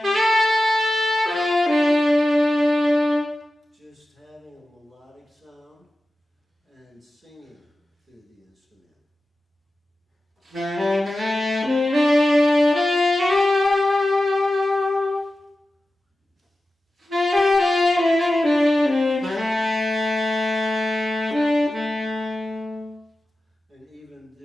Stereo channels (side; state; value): both; normal; correlation 0.93